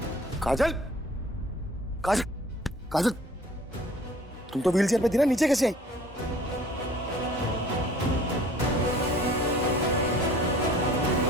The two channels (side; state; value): both; normal; correlation 0.51